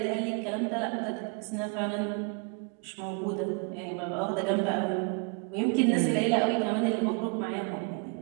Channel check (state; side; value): quieter; left; 34.6 dB